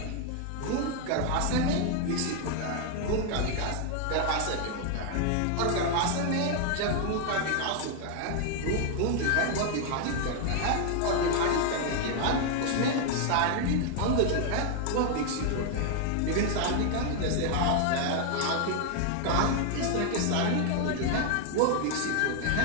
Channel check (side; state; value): both; different; correlation 0.00